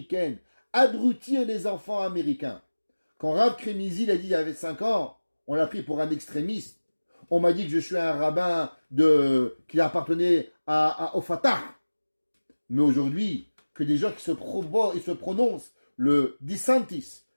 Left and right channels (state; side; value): inverted; both; correlation -1.00